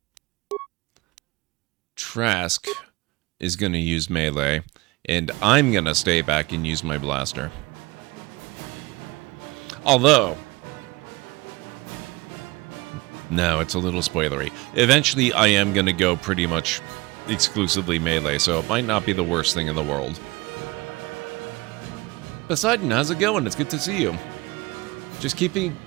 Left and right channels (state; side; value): quieter; left; 22.9 dB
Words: Trask is going to use melee, and I'm going to stay back and use my blaster. Although, no, it's a little spoilery. Eventually, I am going to go pretty much exclusively melee, so it might not be the worst thing in the world. Poseidon, how's it going? It's good to see you. Just keeping